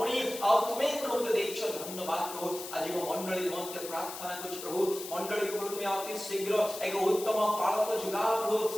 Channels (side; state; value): left; noise; hiss, 10 dB below the sound